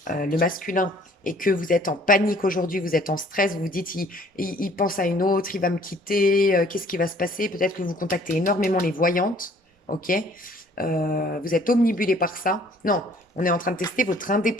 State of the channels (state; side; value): normal; both; correlation 0.57